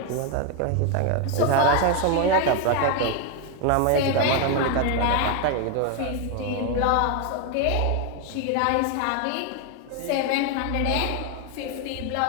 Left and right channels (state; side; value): different; both; correlation 0.01